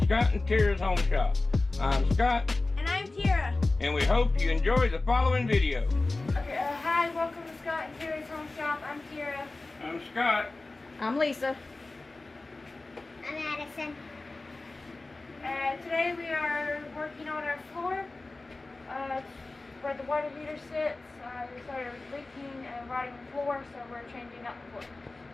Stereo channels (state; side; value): quieter; right; 3.2 dB